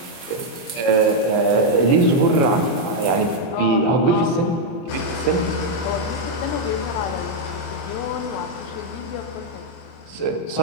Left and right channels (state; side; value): late; right; 24 ms